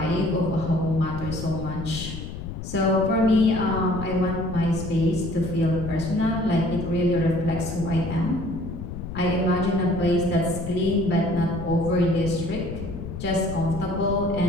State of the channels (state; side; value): noise; left; rumble, 8 dB below the sound